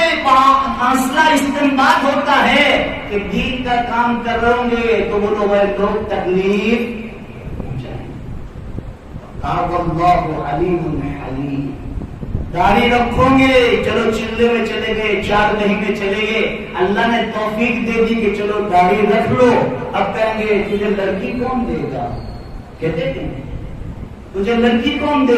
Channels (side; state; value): both; identical; correlation 1.00